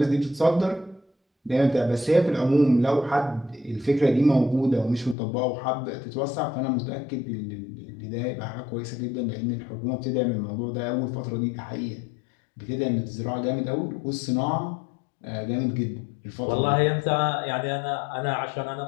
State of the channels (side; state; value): right; drops out; at 5.2 s